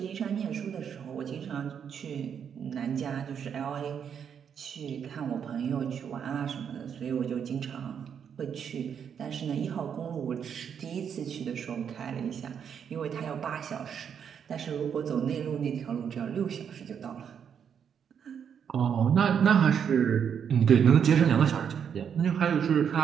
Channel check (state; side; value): quieter; left; 7.8 dB